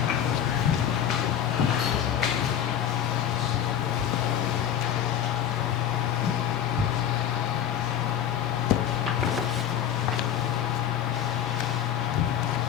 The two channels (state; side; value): quieter; right; 9.8 dB